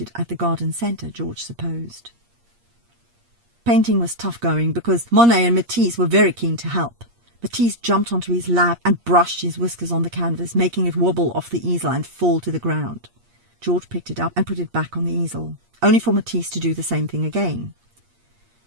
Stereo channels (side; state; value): left; late; 8.5 ms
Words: it at the garden centre, George supposed. Painting was tough going because Monet and Matisse were very keen to help. Matisse jumped onto his lap and brushed his whiskers on the canvas, making it wobble off the easel and fall to the ground. George picked it up and put it back on the easel, only for Matisse to do the same thing again.